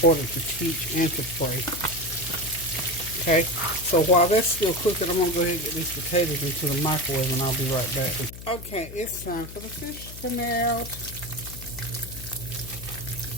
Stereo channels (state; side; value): noise; left; hum, 13 dB below the sound